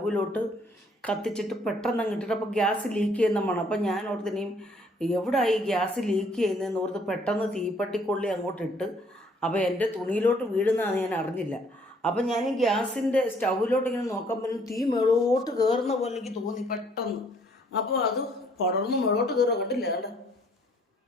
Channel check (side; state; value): both; normal; correlation 0.63